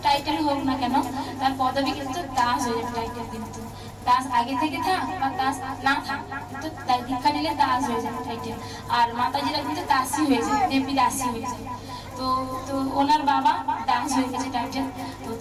টাইটেল হোক না কেন তার পদবি কিন্তু দাস হয়ে যাবে। টাইটেল কিন্তু দাস আগে থেকে থাক বা দাস না থাক, কিন্তু দীক্ষা নিলে দাস হয়ে যাবে টাইটেল। আর মাতাজিরা কিন্তু দাসী হয়ে যায়, দেবী দাসী হয়ে যায়। তো তো ওনার বাবা দাস হয়ে গেছে টাইটেল।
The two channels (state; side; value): identical; both; correlation 1.00